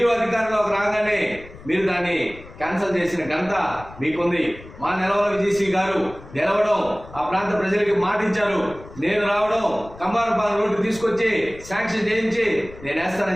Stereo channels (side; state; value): left; noise; rumble, 18 dB below the sound